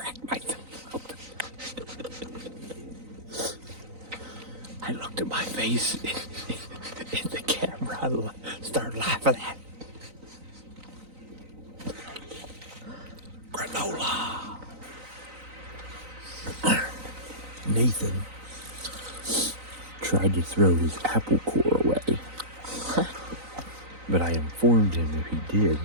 myself up. I looked at my face in the camera. I started laughing at granola. Nathan tried to throw his apple core away, but I informed him if he did,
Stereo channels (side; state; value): left; late; 3.9 ms